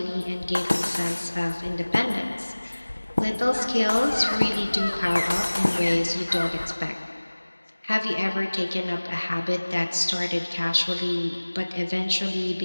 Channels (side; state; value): both; inverted; correlation -1.00